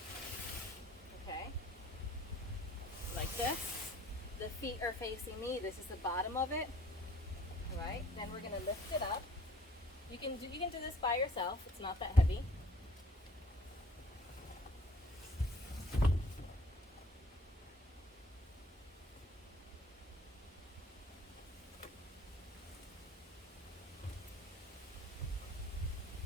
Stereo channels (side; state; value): both; normal; correlation 0.54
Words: okay, like this. The feet are facing me. This is the bottom of it, all right? Then we're going to lift it up. You can do this by yourself. It's not that heavy.